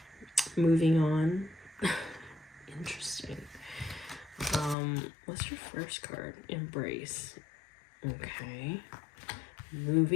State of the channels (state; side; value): drops out; right; at 4.8 s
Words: Moving on. Interesting. What's your first card? Embrace. Okay.